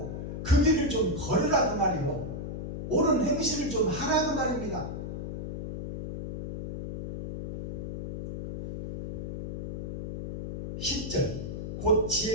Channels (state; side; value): noise; left; hum, 6 dB below the sound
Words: 그 길을 좀 걸으라 그 말이요, 옳은 행실을 좀 하라 그 말입니다. 10절 곧